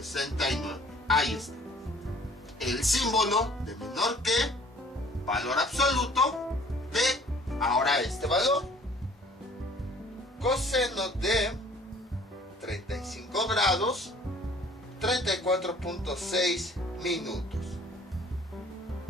Ahí está. El símbolo de menor que, valor absoluto de, ahora este valor, coseno de 35 grados, 34.6 minutos.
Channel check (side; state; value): both; normal; correlation 0.54